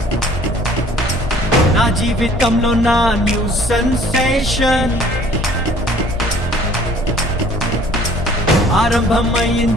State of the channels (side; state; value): both; normal; correlation 0.54